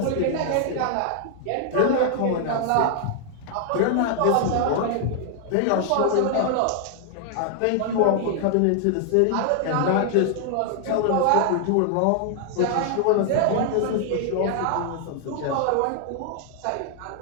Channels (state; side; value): different; both; correlation 0.00